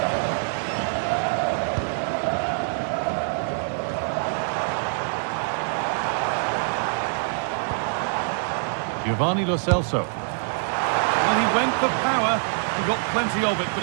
Giovanni Lo Celso. Well, he went for power. He got plenty of it, but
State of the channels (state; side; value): silent; left; 62 dB below the other